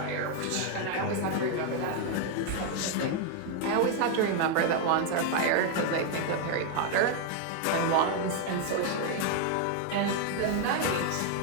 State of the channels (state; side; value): different; both; correlation 0.00